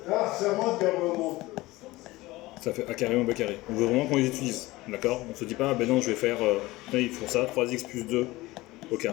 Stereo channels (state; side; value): quieter; right; 19.5 dB